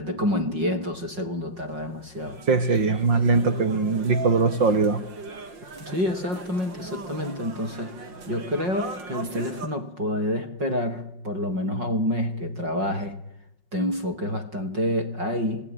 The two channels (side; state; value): left; late; 5.7 ms